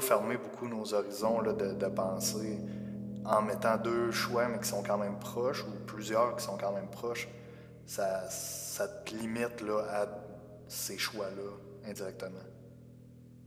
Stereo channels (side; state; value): both; identical; correlation 1.00